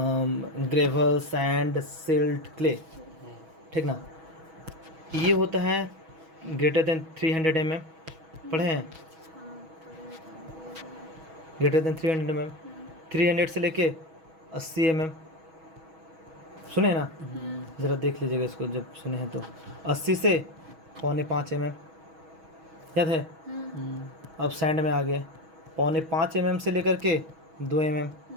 ग्रेवल, सैंड, सिल्ट, क्ले, ठीक ना। ये होता है ग्रेटर देन 300 mm, पढ़े हैं, ग्रेटर देन 300 mm, 300 से लेके 80 mm, सुने ना, ज़रा देख लीजिएगा इसको जब सुने हैं तो। 80 से 4.25 mm याद है। अब सैंड में आ गए, 4.25 mm से लेकर के 2 mm,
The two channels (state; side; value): late; left; 6.2 ms